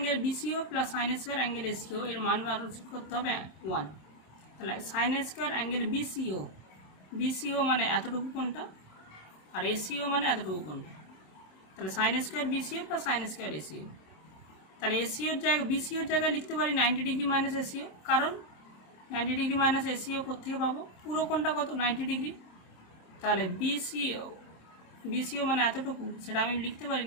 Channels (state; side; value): late; right; 27 ms